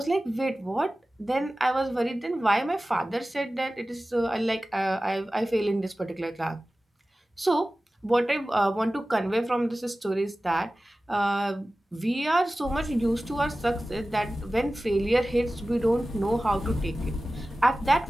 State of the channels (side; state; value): both; normal; correlation 0.96